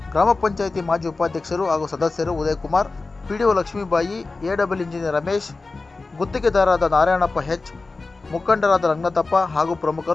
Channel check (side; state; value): right; quieter; 3.7 dB